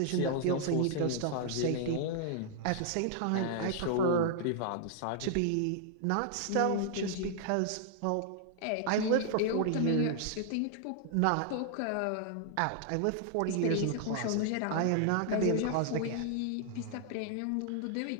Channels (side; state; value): both; different; correlation -0.01